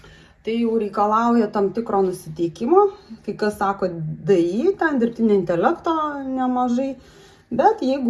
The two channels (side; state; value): both; identical; correlation 1.00